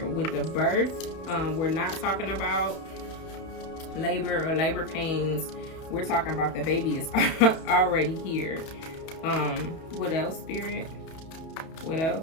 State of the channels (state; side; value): late; right; 31 ms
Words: With the birth, we're not talking about labor or labor pains. We're talking about the baby is already here. What else, Spirit? What